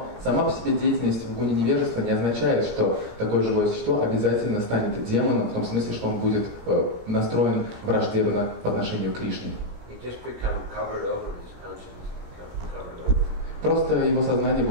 сама по себе деятельность в гуне невежества не означает, что такое живое существо обязательно станет демоном, в том смысле, что он будет настроен враждебно по отношению к Кришне. Просто его сознание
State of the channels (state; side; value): late; left; 17 ms